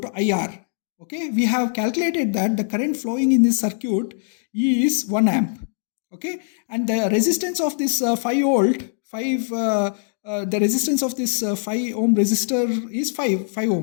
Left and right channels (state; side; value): silent; right; 64 dB below the other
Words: to IR. Okay, we have calculated that the current flowing in this circuit is 1 amp. Okay, and the resistance of this 5 volt, the resistance of this 5 ohm resistor is 5